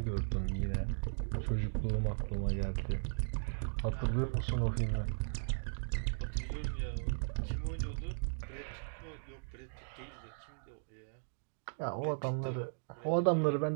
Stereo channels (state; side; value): silent; left; digital silence